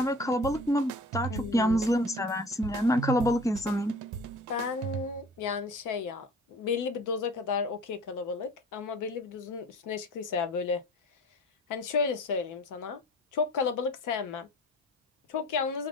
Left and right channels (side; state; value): both; normal; correlation 0.43